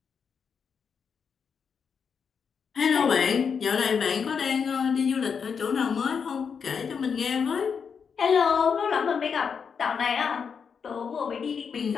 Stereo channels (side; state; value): right; quieter; 6.4 dB